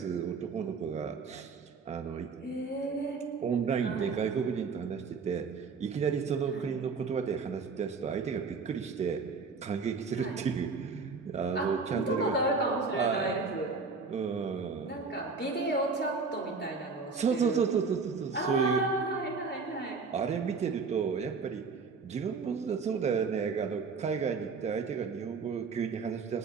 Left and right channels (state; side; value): quieter; left; 4.8 dB